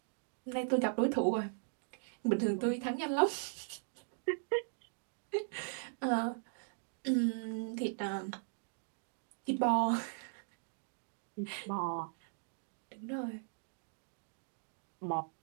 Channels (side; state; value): left; silent; digital silence